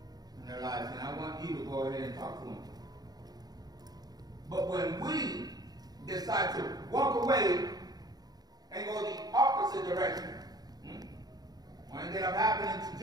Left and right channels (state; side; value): late; left; 0.19 ms